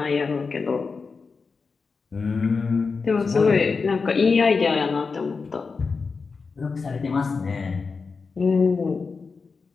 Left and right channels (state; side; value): quieter; right; 4.7 dB